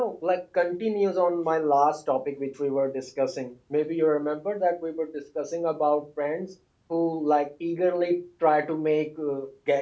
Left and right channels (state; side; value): identical; both; correlation 1.00